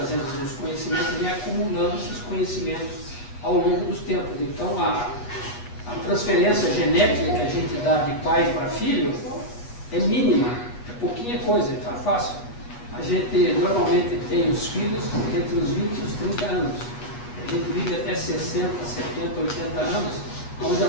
os conhecimentos, vem acumulando esses conhecimentos ao longo dos tempos. Então a transferência genética que a gente dá de pai para filho é mínima, é pouquinha coisa, está fácil. A gente normalmente tem os filhos entre os 20 e os 30 anos. A gente vive até 60, 70, 80 anos, onde a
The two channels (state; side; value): late; right; 8.4 ms